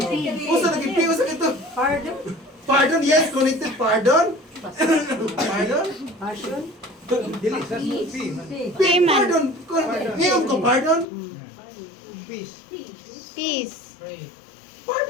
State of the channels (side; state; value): right; drops out; at 11.1 s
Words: Usa naging piyo sa ito. Pardon? Pardon, yes, connected pardon. Pardon? Passion? Dili sa P. Payment. Pardon. Ngayon ko pardon. Peace. Peace. Pray.